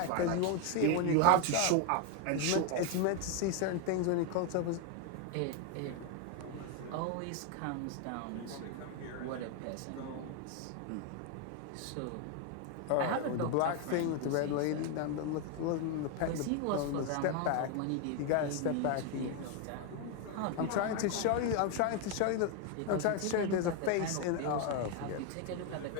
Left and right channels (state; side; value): different; both; correlation 0.01